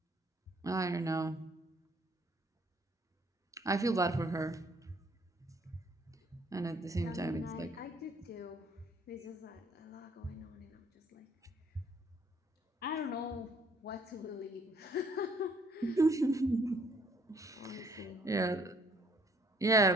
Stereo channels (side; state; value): both; normal; correlation 0.63